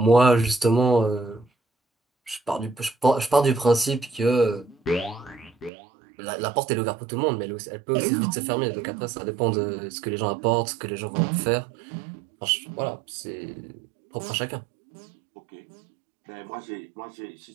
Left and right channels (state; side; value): drops out; left; at 5.7 s